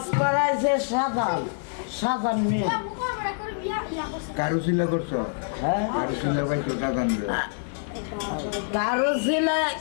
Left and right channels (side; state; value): right; silent; 61 dB below the other